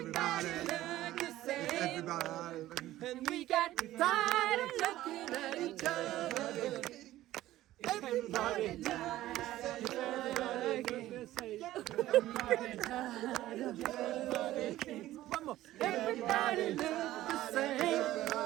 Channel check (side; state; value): left; quieter; 14.9 dB